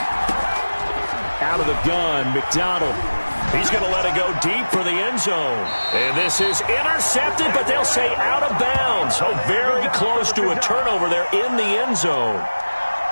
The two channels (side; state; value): both; inverted; correlation -1.00